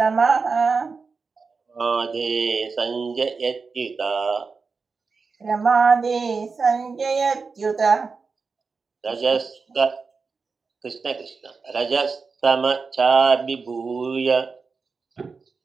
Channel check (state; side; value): quieter; left; 4.7 dB